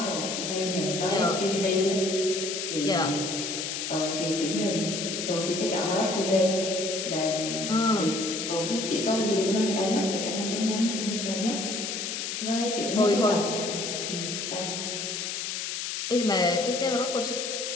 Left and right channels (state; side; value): noise; left; hiss, 3 dB below the sound